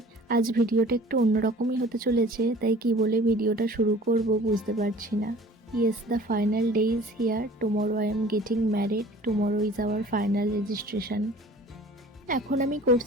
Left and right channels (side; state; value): both; normal; correlation 0.47